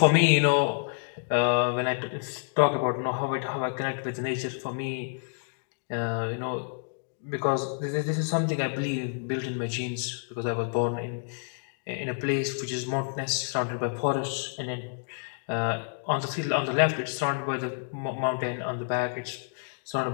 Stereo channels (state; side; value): silent; right; digital silence